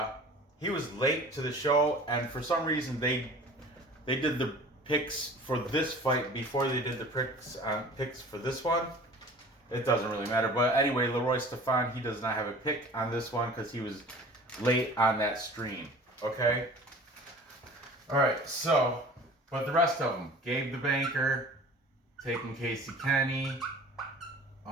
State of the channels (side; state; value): both; normal; correlation 0.44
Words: he was late to the show, and for some reason they did the picks for this fight before they did the picks for this one. It doesn't really matter, but anyway, Leroy Stefan, he does not have a pick on this one because he was late on that stream. Okay. All right. So, but the rest of them, Gabe the Banker taking Casey Kenney,